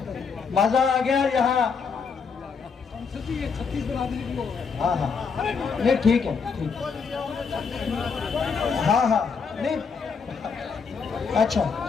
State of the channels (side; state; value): right; quieter; 5.6 dB